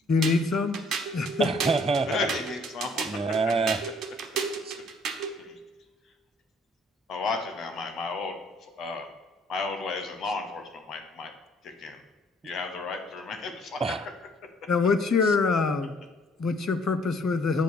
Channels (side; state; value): both; normal; correlation 0.61